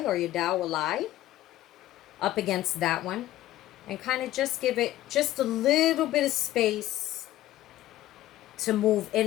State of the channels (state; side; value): quieter; right; 14.5 dB